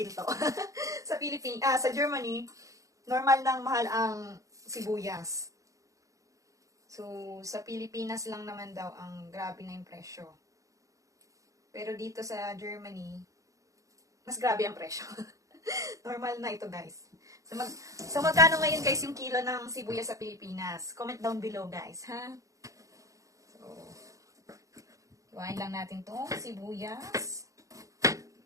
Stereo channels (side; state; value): left; late; 0.16 ms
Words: Sa Germany, normal nang mahal ang sibuyas. So, sa Pilipinas lang naman daw ang grabe na yung presyo. Pero dito sa Germany, mas grabe ang presyo. Normal na ito, guys. So, magkano ngayon, guys, yung kilo ng sibuyas sa Pilipinas? Comment down below, guys, ha? So, iwain lang natin itong sibuyas.